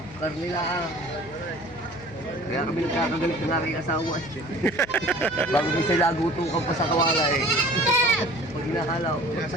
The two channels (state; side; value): noise; left; hum, 19 dB below the sound